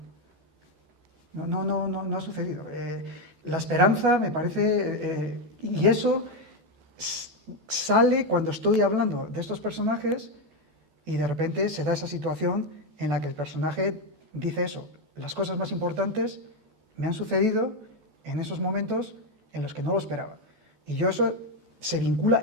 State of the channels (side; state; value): left; late; 14 ms